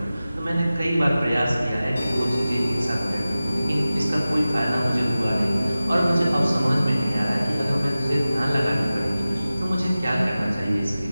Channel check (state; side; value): inverted; both; correlation -0.96